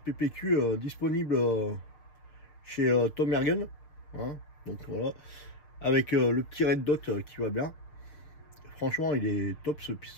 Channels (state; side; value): late; right; 6.6 ms